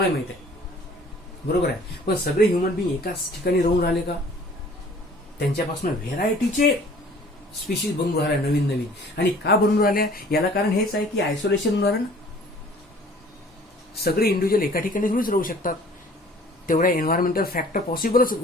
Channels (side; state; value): both; normal; correlation 0.52